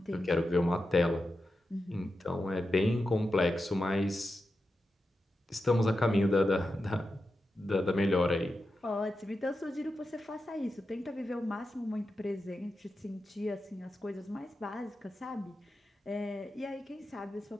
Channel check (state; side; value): normal; both; correlation 0.90